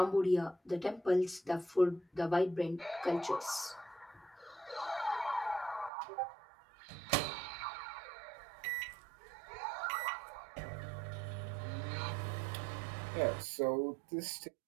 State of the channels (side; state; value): left; drops out; at 5.9 s